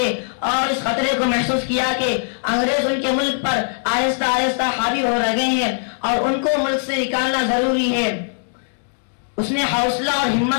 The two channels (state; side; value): silent; right; digital silence